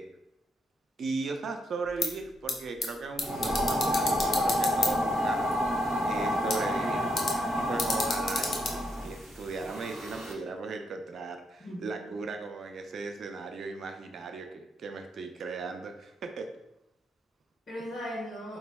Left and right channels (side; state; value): both; normal; correlation 0.78